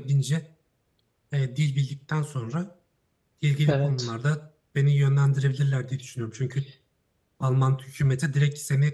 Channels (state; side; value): identical; both; correlation 1.00